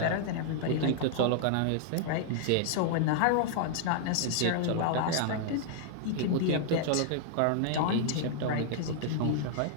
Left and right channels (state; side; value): different; both; correlation -0.01